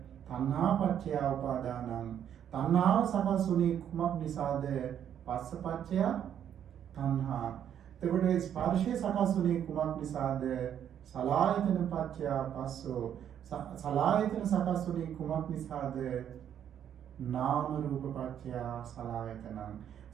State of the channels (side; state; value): left; quieter; 9.5 dB